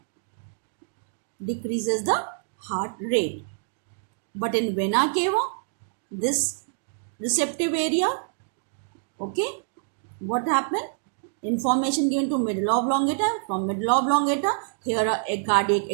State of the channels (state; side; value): silent; left; digital silence